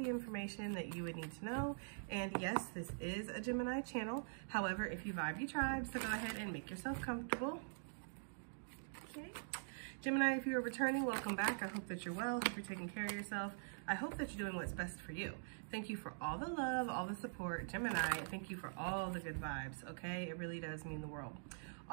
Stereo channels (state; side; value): silent; left; digital silence